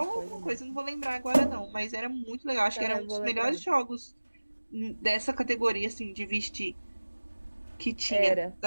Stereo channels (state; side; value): inverted; both; correlation -1.00